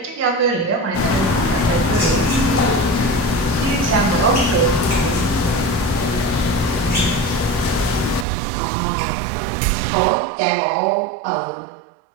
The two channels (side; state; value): left; drops out; at 8.2 s